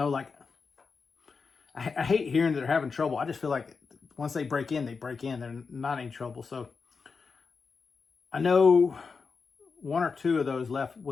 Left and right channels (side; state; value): right; quieter; 5.0 dB